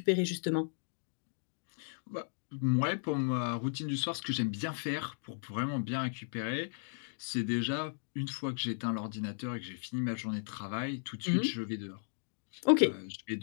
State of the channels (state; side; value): silent; right; digital silence